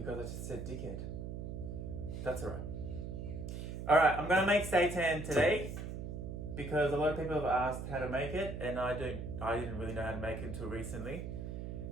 I just said dickhead. That's alright. Alright, I'm gonna make seitan today because a lot of people have asked how to make it and I didn't really know how to make it until recently.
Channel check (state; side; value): noise; right; hum, 6 dB below the sound